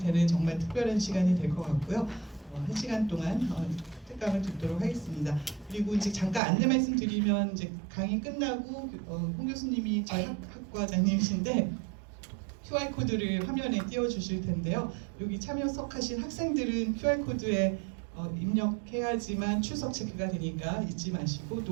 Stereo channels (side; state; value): left; drops out; at 6.4 s